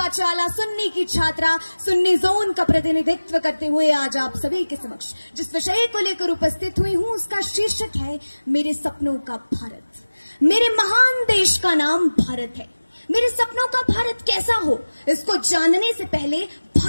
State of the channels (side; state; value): both; inverted; correlation -1.00